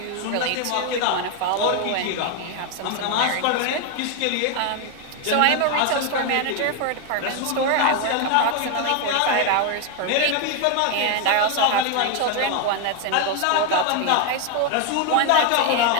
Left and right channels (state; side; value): different; both; correlation 0.01